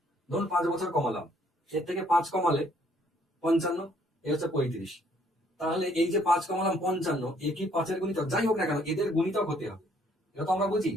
ধরুন 5 বছর কমালাম, এর থেকে 5 কমালে 55, এ হচ্ছে 35। তাহলে এই যে 5 কমালাম 55, এ কি 5 এর গুণিতক? যাই হোক না কেন এদের গুণিতক হতে হবে। এটা তো আমরা বুঝি,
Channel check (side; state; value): both; normal; correlation 0.65